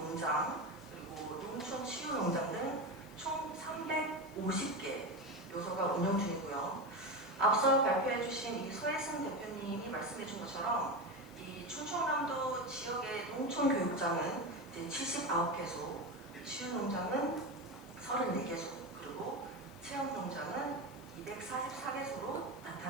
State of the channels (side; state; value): left; noise; hiss, 24 dB below the sound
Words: 그리고 농촌치유농장 등 총 350개 요소가 운영 중이고요. 앞서 발표해 주신 이 소혜승 대표님이 말씀해 준 것처럼 이 충청남도 지역의 농촌교육장은 이제 79개소, 치유농장은 34개소, 그리고 체험농장은 244개소로